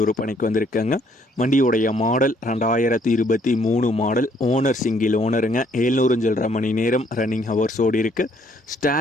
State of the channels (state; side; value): normal; both; correlation 0.66